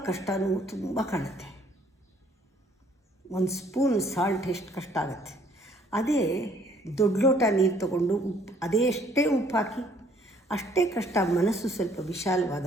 ಕಷ್ಟವೂ ತುಂಬ ಕಾಣುತ್ತೆ. ಒಂದು ಸ್ಪೂನ್ ಸಾಲ್ಟ್ ಎಷ್ಟು ಕಷ್ಟ ಆಗುತ್ತೆ. ಅದೇ ದೊಡ್ಡ ಲೋಟ ನೀರು ತಗೊಂಡು ಅಷ್ಟೇ ಉಪ್ಪು ಹಾಕಿ ಅಷ್ಟೇ ಕಷ್ಟ. ಮನಸ್ಸು ಸ್ವಲ್ಪ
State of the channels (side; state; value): both; normal; correlation 0.61